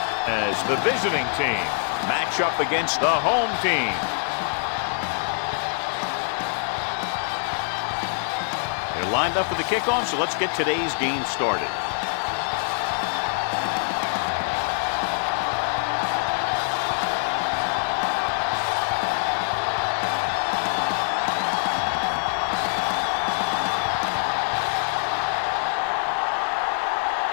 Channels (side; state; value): right; silent; digital silence